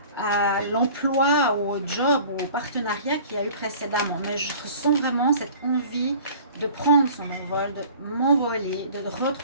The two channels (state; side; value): inverted; both; correlation -0.46